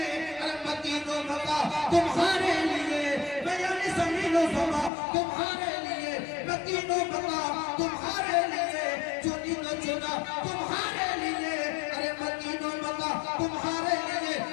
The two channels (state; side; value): drops out; right; at 4.9 s